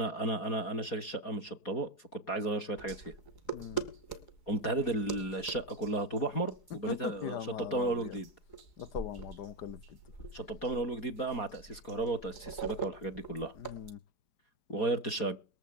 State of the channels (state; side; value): late; right; 4.2 ms